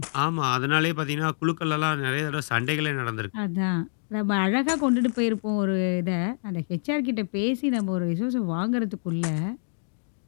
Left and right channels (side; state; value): right; silent; digital silence